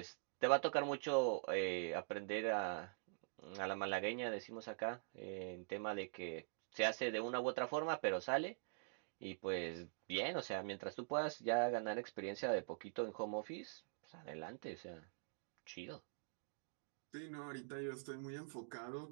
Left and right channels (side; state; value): left; silent; digital silence